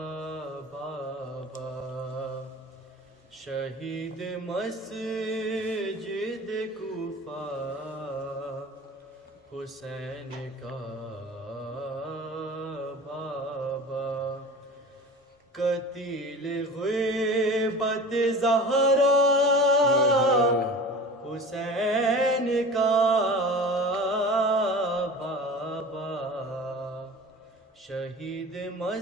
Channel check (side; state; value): both; normal; correlation 0.37